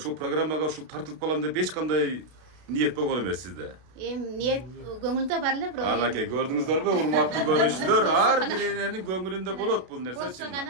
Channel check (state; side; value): late; left; 32 ms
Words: программага ушул тартылып калам деп эч кандай ниет болгон эмес сизде. Ниет көңүлдө бар эле, бирок. Анакей, көрдүңүздөрбү, урматтуу көрүүчүлөр, ар бир эненин көңүлүндө болот бул нерсе. Болсо